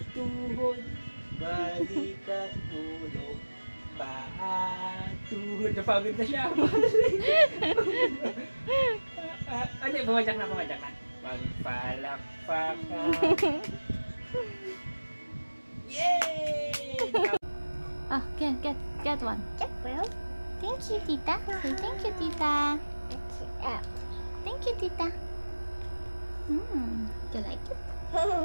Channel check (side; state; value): both; inverted; correlation -1.00